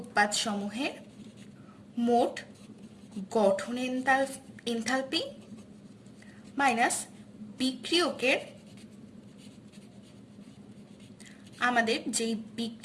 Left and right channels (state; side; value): identical; both; correlation 1.00